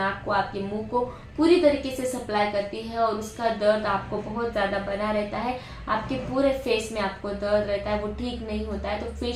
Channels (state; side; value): identical; both; correlation 1.00